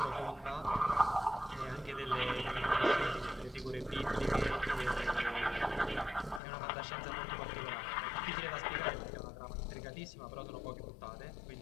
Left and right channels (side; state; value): right; drops out; at 6.4 s